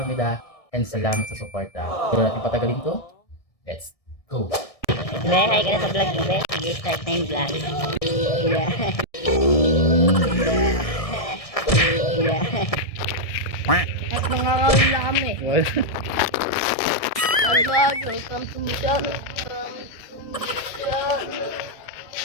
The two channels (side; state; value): right; late; 1.6 ms